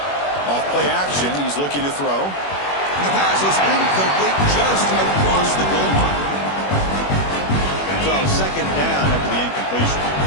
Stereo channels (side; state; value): right; late; 21 ms